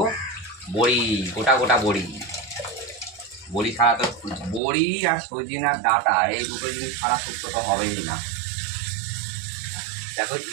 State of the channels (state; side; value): drops out; left; at 4.6 s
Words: বড়ি, গোটা গোটা বড়ি। বড়ি ছাড়া তো, বড়ি আর সজিনার ডাঁটা, এই দুটো জিনিস ছাড়া শুক্তো তো হবেই না। দেখো